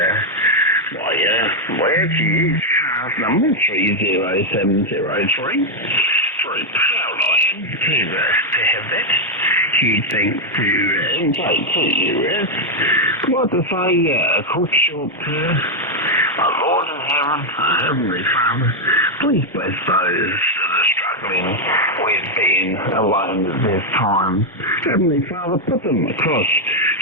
where to use cars number 30703. Very proud I am to have that. Huge thanks to NJ2US. Like to say, quick short our Lord in heaven, our Heavenly Father, please bless those that are struggling with being alone at this time. Heavenly Father, put them across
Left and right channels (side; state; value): both; normal; correlation 0.00